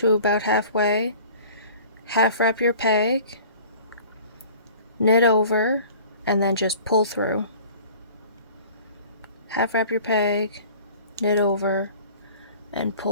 about halfway, half wrap your peg, knit over, and then just pull through. Half wrap your peg, knit over, and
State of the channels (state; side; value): inverted; both; correlation -0.47